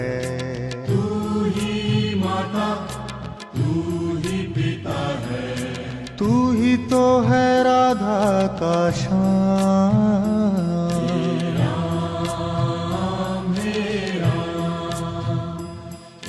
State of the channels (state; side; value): identical; both; correlation 1.00